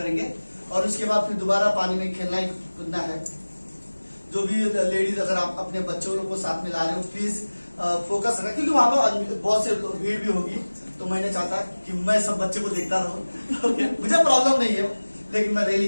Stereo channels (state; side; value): inverted; both; correlation -1.00